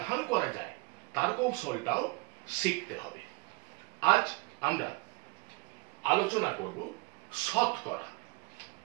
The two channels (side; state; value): left; quieter; 27.7 dB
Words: করা যায় তার কৌশলটাও শিখতে হবে। আজ আমরা আলোচনা করব শতকরা।